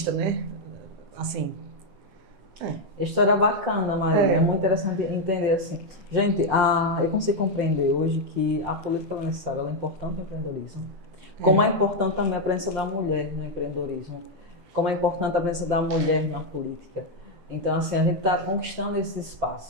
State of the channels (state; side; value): late; left; 7.8 ms